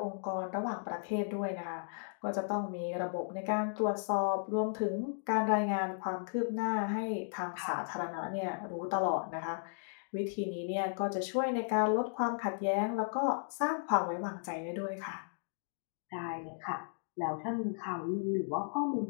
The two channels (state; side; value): silent; right; digital silence